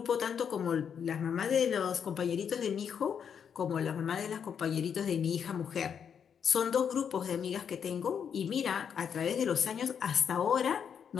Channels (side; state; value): right; quieter; 7.6 dB